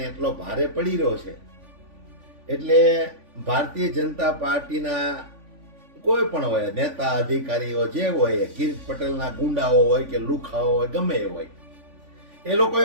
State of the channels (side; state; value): left; late; 3.5 ms